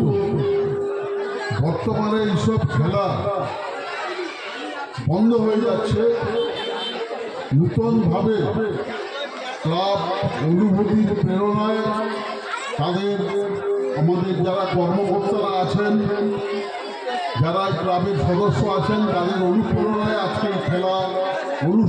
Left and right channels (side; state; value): both; identical; correlation 1.00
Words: বর্তমানে এইসব খেলা বন্ধ হয়ে যাচ্ছে। নূতনভাবে ক্লাব অনুভূতির প্রেরণায় আমাদের যারা কর্মকর্তারা আছেন, যারা ক্লাবের সদস্য আছেন, তাদের অনুপ্রেরণায় আজকে খেলা